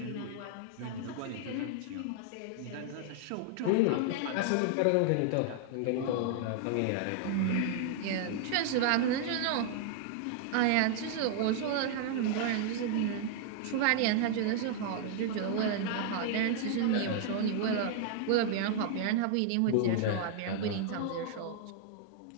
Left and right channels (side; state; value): both; different; correlation 0.00